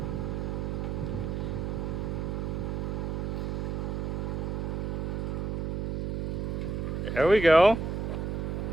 There we go.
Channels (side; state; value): right; noise; hum, 1 dB below the sound